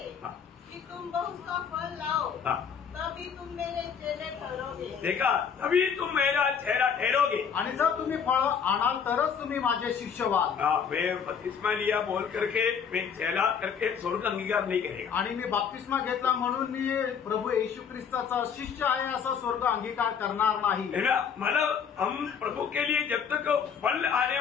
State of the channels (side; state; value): right; quieter; 7.1 dB